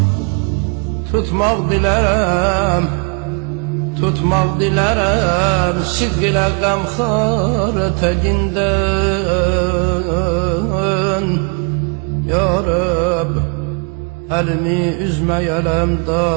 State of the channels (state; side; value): quieter; left; 34.2 dB